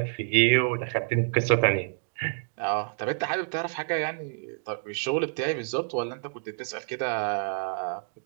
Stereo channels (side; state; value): left; silent; digital silence